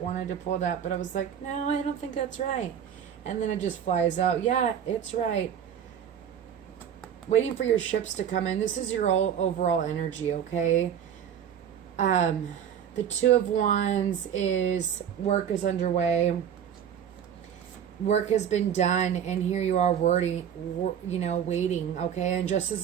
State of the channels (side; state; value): left; quieter; 8.9 dB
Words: to pull that, but I was like, no, I don't think that's right. And then it just flies out. Yeah, it's right. Waiting for your ships to come in. This is your overall energy, okay? The Two of Wands is work is underway. Work has been done, and here you are waiting, okay? And